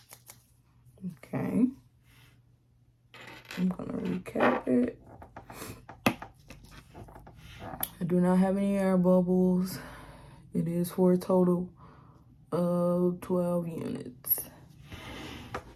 Okay. I'm gonna recap it. I do not have any air bubbles. It is for a total of 12 units.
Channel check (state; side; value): identical; both; correlation 1.00